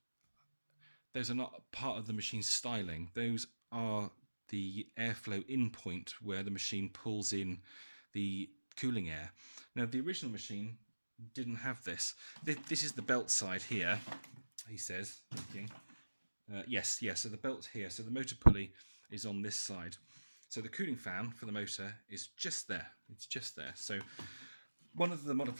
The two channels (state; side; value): inverted; both; correlation -1.00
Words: part of the machine's styling. Those are the airflow in point where the machine pulls in the cooling air. Now, the original machine didn't have this. This is the belt side here, he says. Yes, so the belt's here. So the motor pulley is on this side. So the cooling fan for the motor is just there. It's just there. So one of the